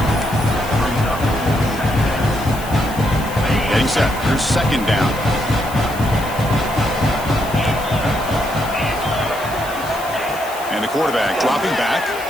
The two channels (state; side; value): noise; left; hiss, 15 dB below the sound